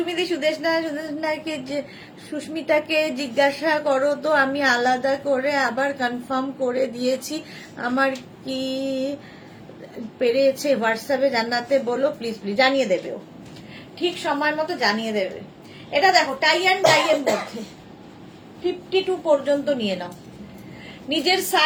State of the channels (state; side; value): identical; both; correlation 1.00